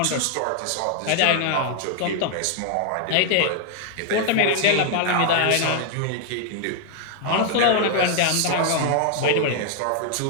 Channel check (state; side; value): different; both; correlation 0.00